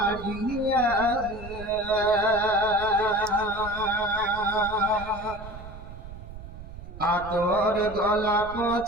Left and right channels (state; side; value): noise; right; rumble, 13 dB below the sound